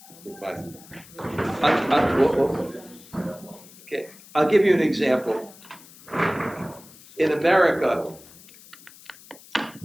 look by. Okay, I'll give you an example. In America,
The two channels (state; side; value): noise; left; hiss, 22 dB below the sound